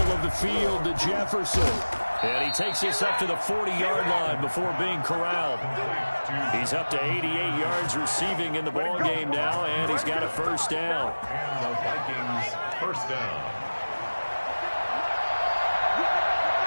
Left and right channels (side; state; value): both; inverted; correlation -1.00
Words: of the field to Jefferson. And he takes this up to the 40-yard line before being corralled. He's up to 88 yards receiving in the ball game now, and he's got a first down. And the Vikings first down.